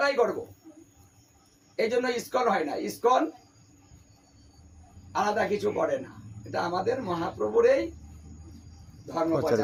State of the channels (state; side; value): identical; both; correlation 1.00